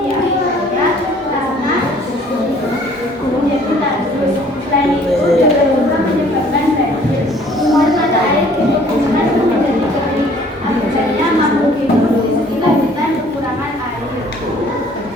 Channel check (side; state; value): both; normal; correlation 0.56